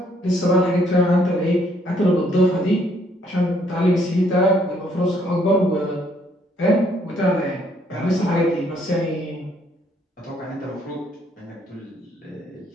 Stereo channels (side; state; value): both; normal; correlation 0.67